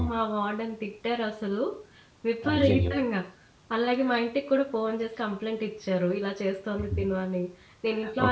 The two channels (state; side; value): identical; both; correlation 1.00